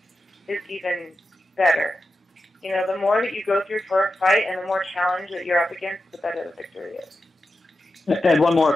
is even better. The more that you go through for a fight and the more challenge that you're up against, the better the victory is. And one more,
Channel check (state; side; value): normal; both; correlation 0.90